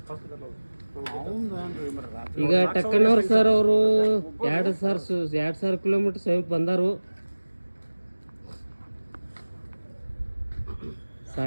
ಈಗ ಟಕ್ಕಣ್ಣವ್ರು ಸರ್ ಅವರು 2,000 ಕಿಲೋಮೀಟ್ರ್ ಸಮೀಪ ಬಂದಾರು.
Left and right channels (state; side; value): inverted; both; correlation -1.00